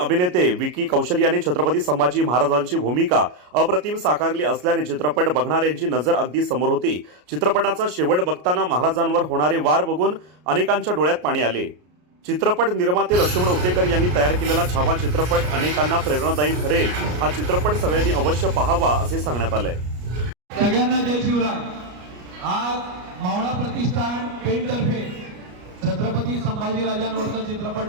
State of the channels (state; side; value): late; left; 33 ms